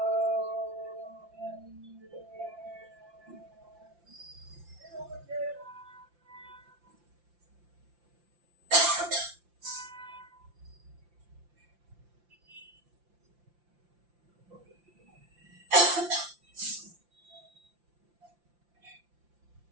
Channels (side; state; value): left; late; 5.8 ms